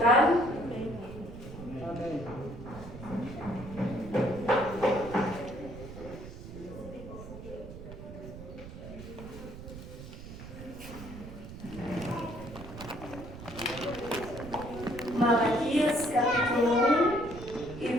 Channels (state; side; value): noise; right; rumble, 12 dB below the sound